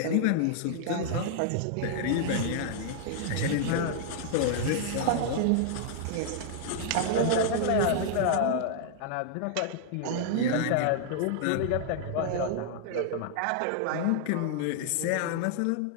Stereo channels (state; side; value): different; both; correlation -0.01